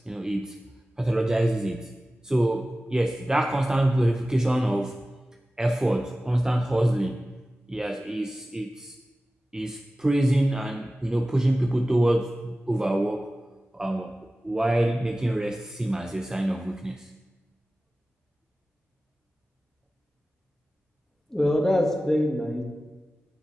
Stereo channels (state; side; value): normal; both; correlation 0.96